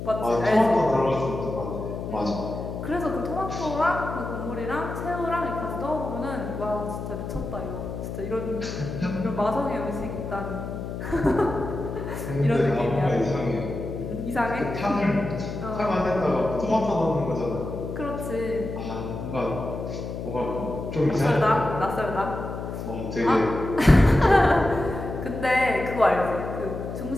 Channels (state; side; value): noise; left; hum, 6 dB below the sound